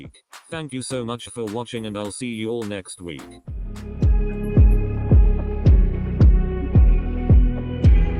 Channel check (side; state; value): both; identical; correlation 1.00